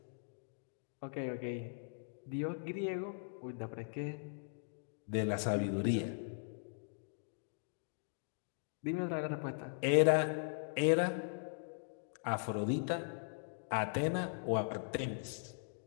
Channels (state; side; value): silent; right; digital silence